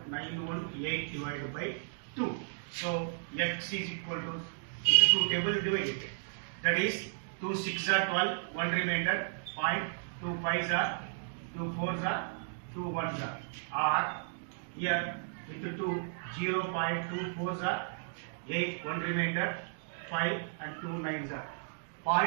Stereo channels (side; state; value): left; silent; digital silence